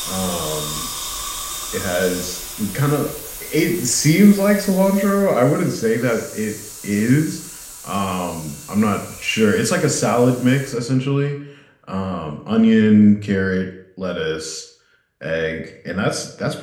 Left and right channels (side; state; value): both; identical; correlation 1.00